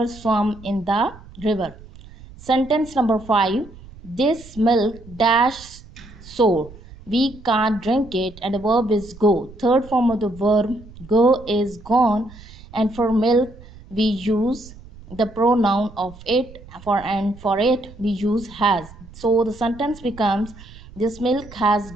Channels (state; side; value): noise; right; rumble, 19 dB below the sound